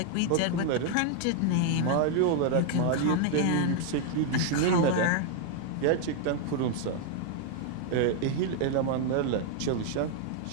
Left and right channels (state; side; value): different; both; correlation 0.00